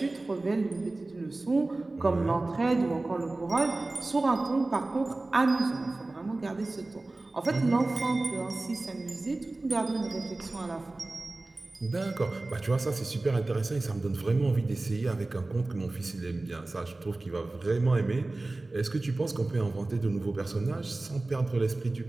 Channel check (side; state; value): left; quieter; 3.0 dB